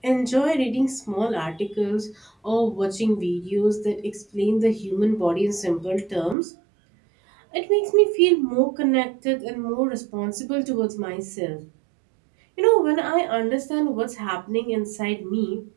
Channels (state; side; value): drops out; left; at 6.4 s